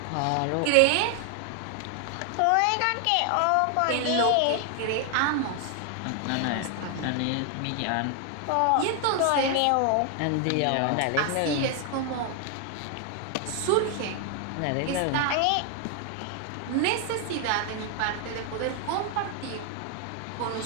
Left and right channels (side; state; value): both; different; correlation 0.00